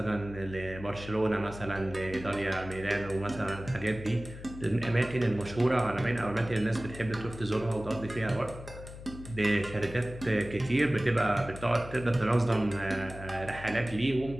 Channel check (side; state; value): left; noise; hum, 13 dB below the sound